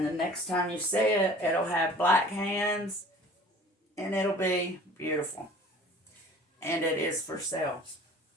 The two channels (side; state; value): both; normal; correlation 0.47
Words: the next time you see it, it'll have black hands and it'll be beautiful. And it is for sale.